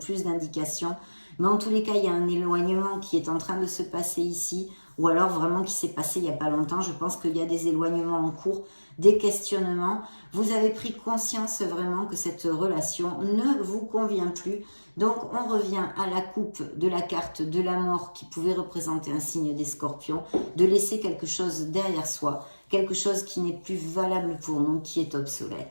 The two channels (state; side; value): inverted; both; correlation -1.00